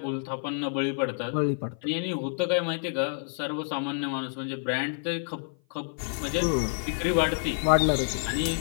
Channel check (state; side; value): silent; right; 55 dB below the other